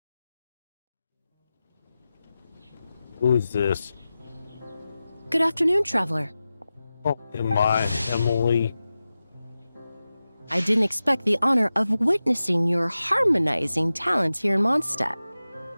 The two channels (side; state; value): both; inverted; correlation -0.94